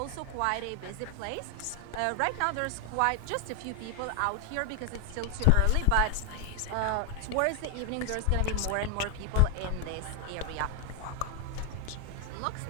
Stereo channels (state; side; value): different; both; correlation 0.00